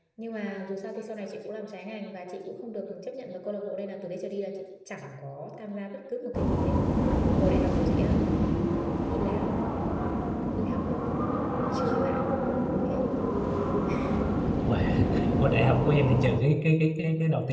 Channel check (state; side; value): identical; both; correlation 1.00